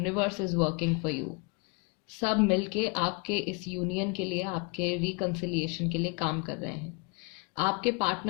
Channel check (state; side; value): quieter; right; 31.7 dB